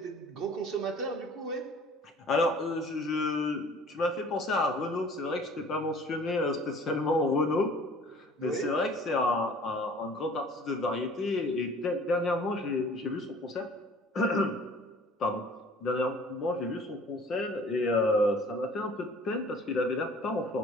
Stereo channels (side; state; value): both; normal; correlation 0.50